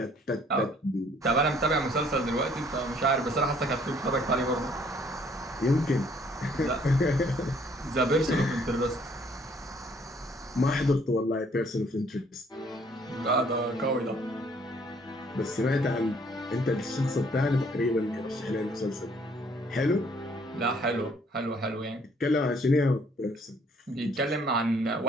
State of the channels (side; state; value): both; normal; correlation 0.62